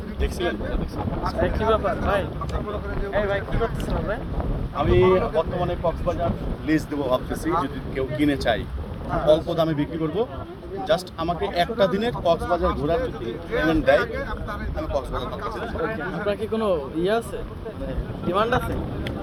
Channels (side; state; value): both; identical; correlation 1.00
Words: থ্রি পিস কি ব্যাপার ভাই? এই ভাই কি করতেছেন আপনি? আমি বর্তমানে কক্সবাজার লিজ দেবো ভাবতেছি, যদি কেউ কিনে চাই অল্প দামে বিক্রি করব। জাস্ট আমাকে একটা দিনের কক্সবাজার ঘোরার যদি পেমেন্ট দেয়, আমি কক্সবাজার ভাবতেছি। আপনার কি কোনো ইয়ে আছে, ডিমান্ড আছে?